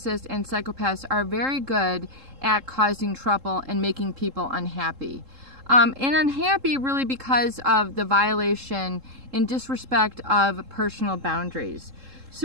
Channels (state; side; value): late; left; 3.7 ms